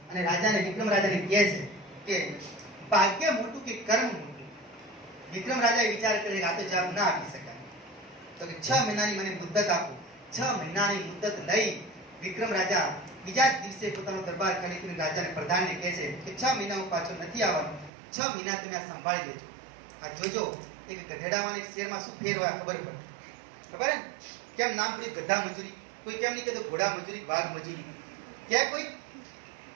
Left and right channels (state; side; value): drops out; left; at 17.9 s